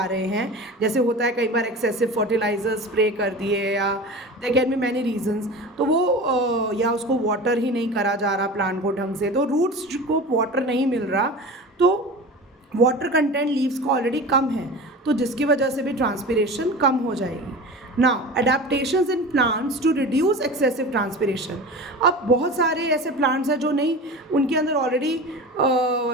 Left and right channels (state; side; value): normal; both; correlation 0.33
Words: रहे हैं, जैसे होता है कई बार एक्सेसिव फर्टिलाइजर स्प्रे कर दिए या there can be many reasons, तो वो या उसको वाटर ही नहीं करा जा रहा प्लांट को ढंग से, तो रूट्स को वाटर नहीं मिल रहा, तो वाटर कंटेंट लीव्स का ऑलरेडी कम है तो जिसकी वजह से भी ट्रांसपिरेशन कम हो जाएगी. Now adaptations in plants to reduce excessive transpiration. अब बहुत सारे ऐसे प्लांट्स हैं जो नहीं, उनके अंदर ऑलरेडी